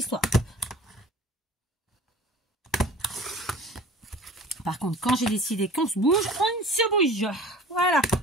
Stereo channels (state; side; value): normal; both; correlation 0.43